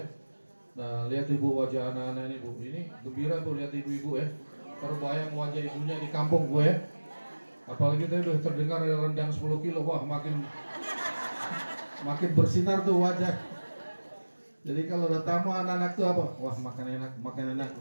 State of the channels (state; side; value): inverted; both; correlation -1.00